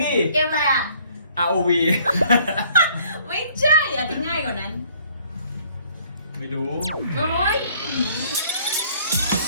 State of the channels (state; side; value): inverted; both; correlation -0.59